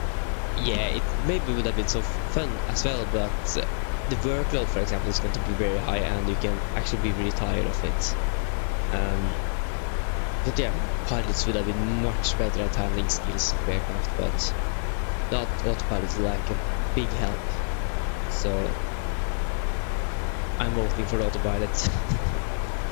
Yeah, it maybe would have been so fun as well, but the workload, for example, is going to be very high, and you can actually be really tired of it. But yeah, pilots would have been much better at handling skills of aircraft, but not autopilot is like a big help. So I'm voting for the autopilot.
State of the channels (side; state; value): right; silent; 59 dB below the other